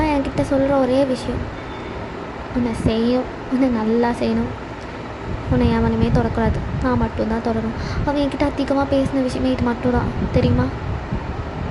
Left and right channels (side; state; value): both; identical; correlation 1.00